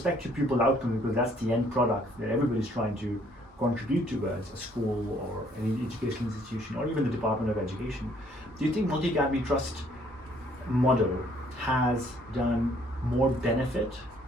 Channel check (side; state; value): both; normal; correlation 0.63